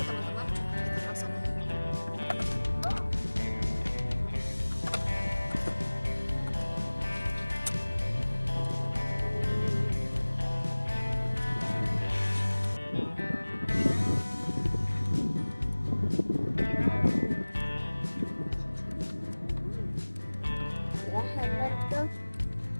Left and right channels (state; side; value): inverted; both; correlation -1.00